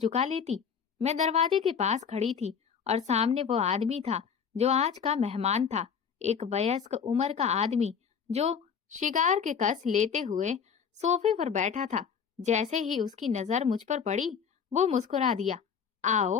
लेती। मैं दरवाजे के पास खड़ी थी और सामने वो आदमी था जो आज का मेहमान था, एक वयस्क उम्र का आदमी जो शिकार के कस लेते हुए सोफे पर बैठा था। जैसे ही उसकी नजर मुझ पर पड़ी, वो मुस्कुरा दिया।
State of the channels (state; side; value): quieter; right; 6.9 dB